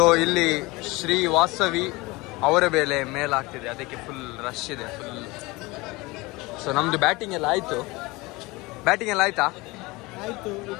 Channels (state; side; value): quieter; right; 22.8 dB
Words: ಇಲ್ಲಿ ಶ್ರೀ ವಾಸವಿ ಅವರ ಬೆಲೆ ಮೇಲಾಗ್ತಿದೆ, ಅದಕ್ಕೆ ಫುಲ್ ರಶ್ ಇದೆ ಫುಲ್. ಸೊ ನಮ್ದು ಬ್ಯಾಟಿಂಗ್ ಎಲ್ಲ ಆಯ್ತಾ? ಆಯ್ತು.